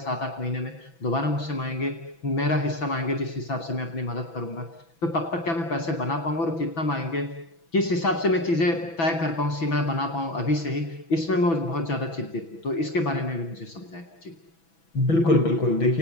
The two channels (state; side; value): late; right; 6.0 ms